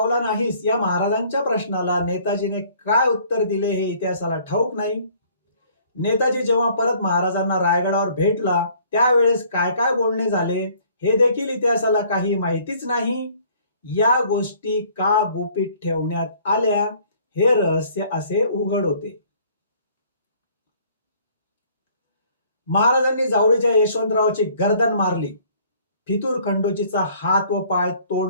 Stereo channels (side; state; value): both; inverted; correlation -0.57